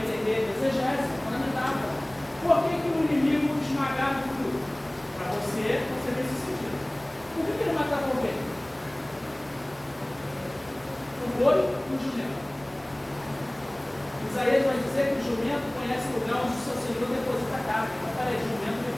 exegese, na metáfora. Por que o inimigo esmagava tudo? Para você ver esse sentido. Por que ele matava o ovelha? O boi e o jumento. Isaías vai dizer que o jumento conhece o lugar onde o seu Senhor deposita a carne. Então, peraí, jumento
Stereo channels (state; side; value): noise; right; rumble, 27 dB below the sound